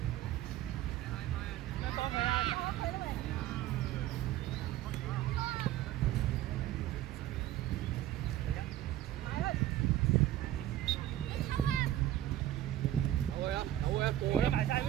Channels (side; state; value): left; quieter; 13.2 dB